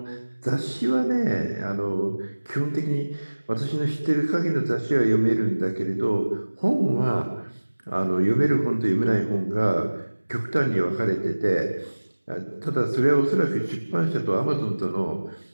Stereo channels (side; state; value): both; inverted; correlation -1.00